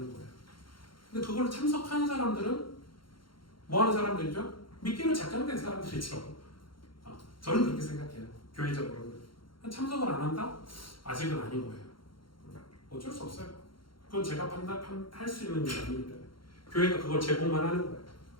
거예요. 근데 그걸 참석하는 사람들은 뭐 하는 사람들이죠? 믿기로 작정된 사람들이죠. 저는 그렇게 생각해요. 교회적으로는. 참석을 안 한다? 아직은 아닌 거예요. 어쩔 수 없어요. 그건 제가 판단할 수 있는 일이 아니기 때문에 교회가 그걸 제공만 하는 거예요.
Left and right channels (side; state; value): right; late; 0.73 ms